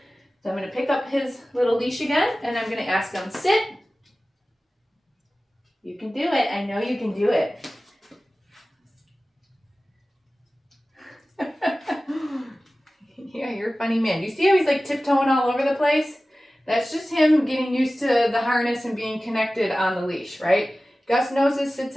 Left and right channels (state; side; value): normal; both; correlation 0.96